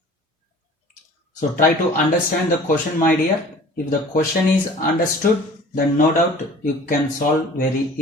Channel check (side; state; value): both; normal; correlation 0.46